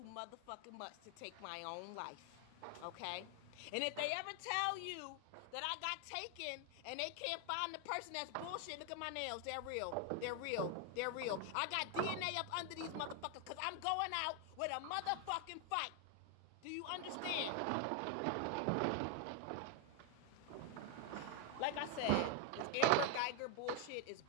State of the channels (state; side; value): different; both; correlation 0.00